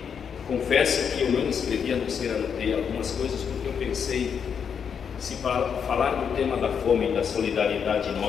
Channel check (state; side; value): quieter; right; 7.1 dB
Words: confesso que eu não escrevi, a não ser anotei algumas coisas, porque eu pensei, se falar do tema da fome e da solidariedade